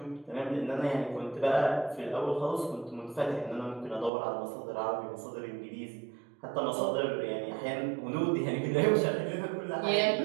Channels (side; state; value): left; drops out; at 4.1 s